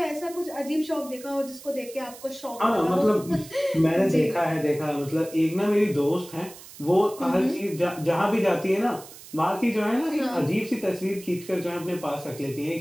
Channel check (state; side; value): noise; right; hiss, 17 dB below the sound